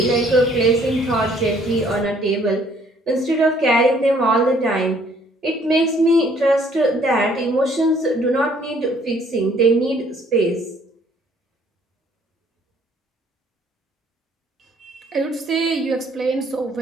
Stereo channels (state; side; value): normal; both; correlation 0.61